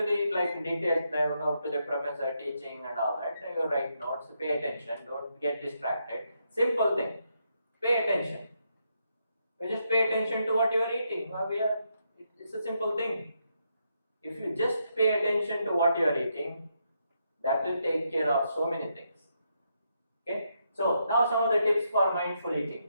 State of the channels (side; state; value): both; inverted; correlation -0.80